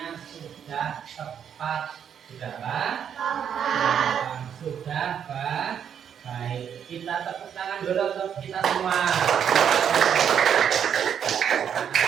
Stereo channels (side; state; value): left; quieter; 8.4 dB